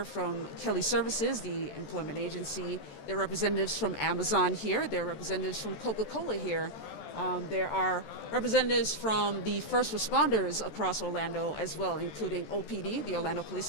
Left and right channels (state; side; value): late; right; 14 ms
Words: from Kelly Services, the employment agency. There are representatives from Amazon here. There are representatives from Coca-Cola here. There are representatives from the first responders across Orlando as well, including OPD, the Orlando Police